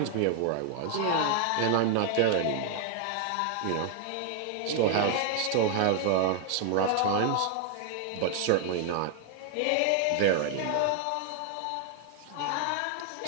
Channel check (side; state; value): both; different; correlation 0.00